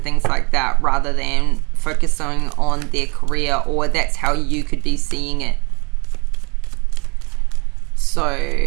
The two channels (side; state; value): left; quieter; 30.7 dB